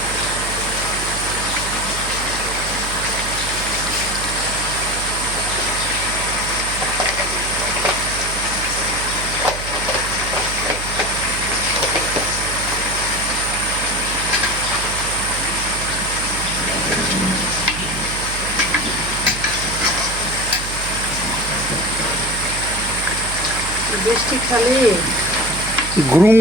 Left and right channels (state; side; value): noise; right; hum, 8 dB below the sound